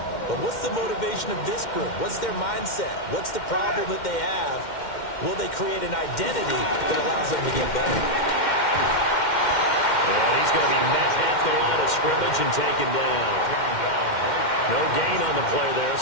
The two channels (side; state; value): right; late; 2.1 ms